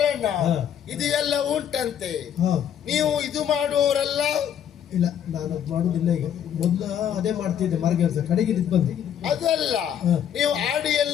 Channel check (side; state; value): right; quieter; 9.4 dB